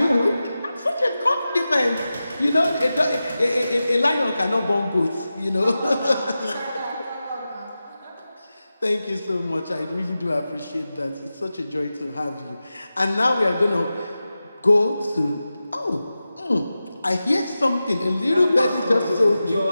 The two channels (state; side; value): inverted; both; correlation -0.93